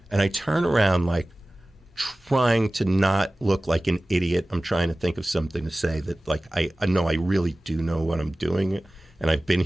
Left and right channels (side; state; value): both; normal; correlation 0.97